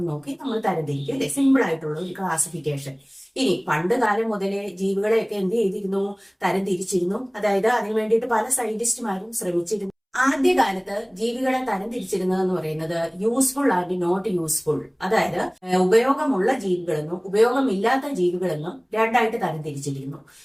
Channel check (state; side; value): identical; both; correlation 1.00